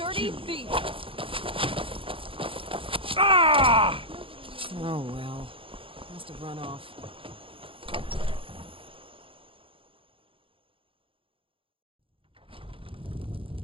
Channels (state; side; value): late; left; 0.26 ms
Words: thief! Ah! Oh well. Must have run off.